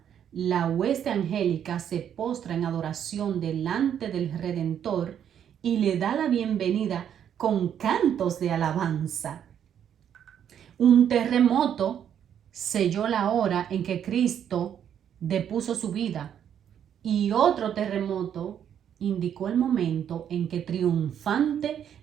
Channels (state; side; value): quieter; left; 9.2 dB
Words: la hueste angélica se postra en adoración delante del Redentor y le da la bienvenida con cantos de alabanza. Un terremoto selló la hora en que Cristo depuso su vida, y otro terremoto indicó el momento en que triunfante